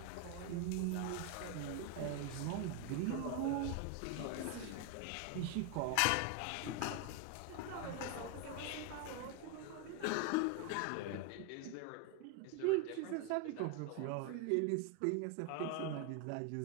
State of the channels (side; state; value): both; different; correlation 0.01